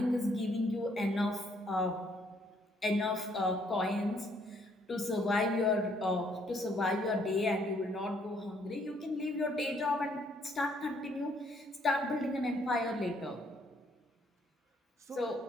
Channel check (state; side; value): normal; both; correlation 0.68